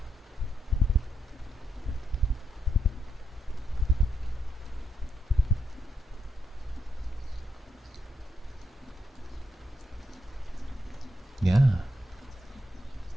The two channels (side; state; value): both; normal; correlation 0.78